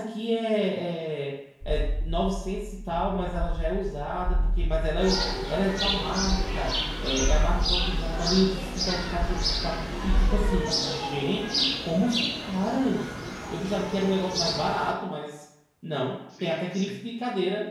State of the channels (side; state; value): both; identical; correlation 1.00